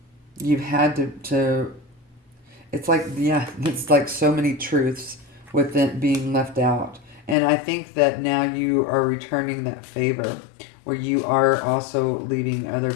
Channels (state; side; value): drops out; right; at 7.4 s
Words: you've had to it's like so many truths with it being left out. And I think that now you are returning that favor, where you are also leaving other